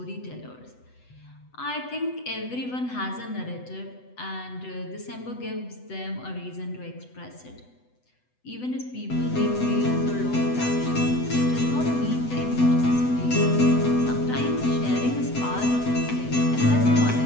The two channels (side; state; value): right; late; 8.0 ms